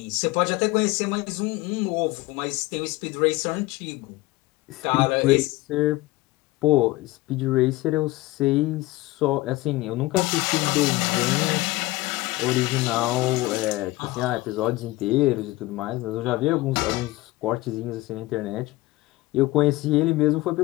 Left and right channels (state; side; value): quieter; right; 19.4 dB